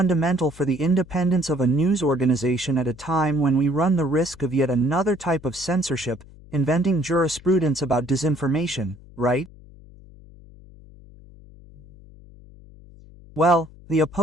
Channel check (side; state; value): left; noise; hum, 21 dB below the sound